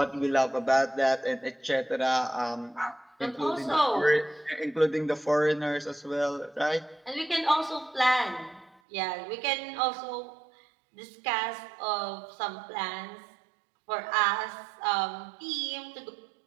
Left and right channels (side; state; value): left; drops out; at 8.8 s